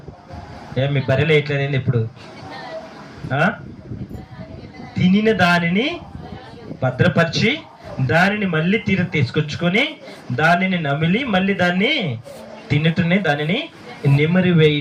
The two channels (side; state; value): both; identical; correlation 1.00